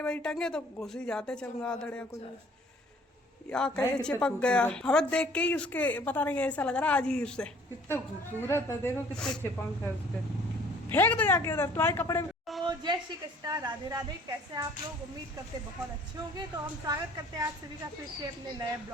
वही टंगे तो घुस ही जाते चमगादड़ या कुछ या कहीं चिपक गया। हमें देख के ही उसके पता नहीं ऐसा लग रहा अजीब से। कितना खूबसूरत है, देखो कितने चिपंख है उसके। फेंक दो जाके उधर तुम्हारे कपड़े में। तो जय श्री कृष्णा, राधे राधे। कैसे आप लोग? उम्मीद करते बहुत अच्छे होंगे। तो हम स्वागत करते हैं आप सभी का फिर से अपने नए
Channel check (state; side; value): normal; both; correlation 0.55